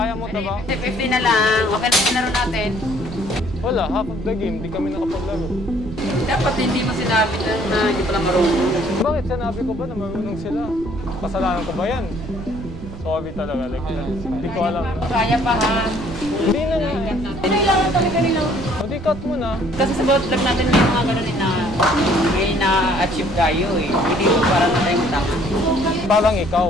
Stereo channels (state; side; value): noise; right; rumble, 12 dB below the sound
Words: mo na ba? 50 na lang. Okay na yung laro natin. Wala, half of the game, di kami nakapaglaro. Dapat hindi mo sinabi na hindi pala marunong. Bakit sinabi ko ba na marunong sila? Kasalanan ko ba yan? Sorry talaga, like, hindi ko alam. Kaya pa ha. Hindi na nga. Kailangan talaga nila. O di cut mo na. Kasi sa bawat vlog natin may mga ganun na may na-achieve tayo eh. Hindi mo para na tayong tama. Parang ikaw.